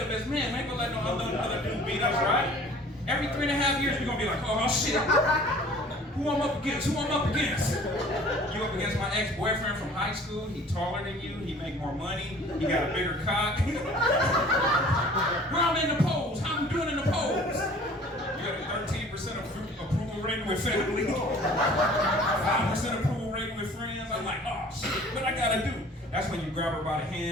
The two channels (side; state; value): both; normal; correlation 0.49